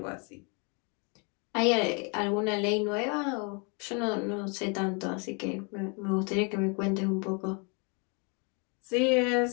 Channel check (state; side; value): quieter; right; 34.4 dB